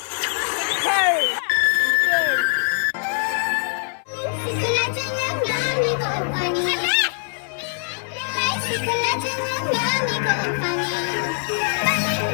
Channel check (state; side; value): silent; right; 59 dB below the other